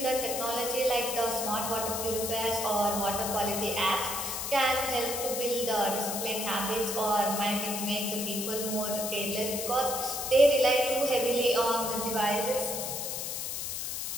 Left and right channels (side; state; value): left; noise; hiss, 3 dB below the sound